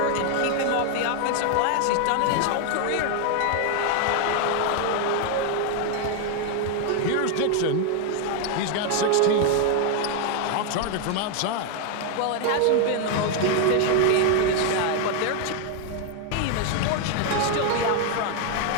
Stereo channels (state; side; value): different; both; correlation 0.01